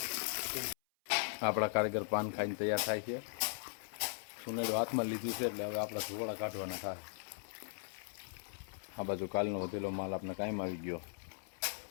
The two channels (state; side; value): silent; right; 52 dB below the other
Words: આપણા કારીગર પાન ખાઈને તૈયાર થાય છે. સુનેડો હાથમાં લીધું છે એટલે હવે આપણા ધોવાડા કાઢવાના થાય. આ બાજુ કાલનો વધેલો માલ આપણે કાયમ આવી ગયો